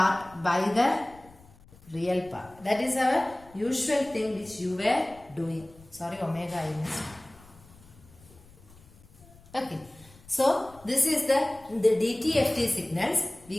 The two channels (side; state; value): left; noise; rumble, 24 dB below the sound